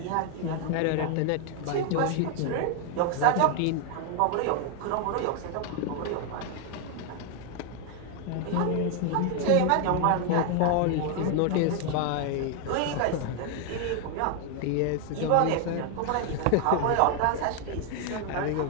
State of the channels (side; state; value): both; different; correlation 0.01